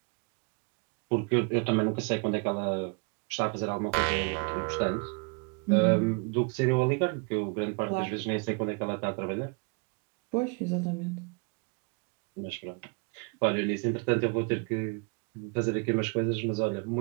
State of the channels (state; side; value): quieter; left; 33.4 dB